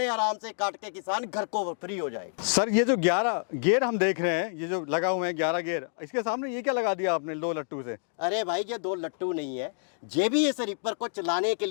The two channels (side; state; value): right; silent; digital silence